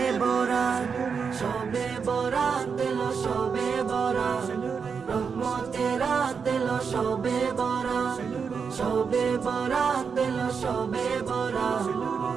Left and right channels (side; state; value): left; quieter; 5.9 dB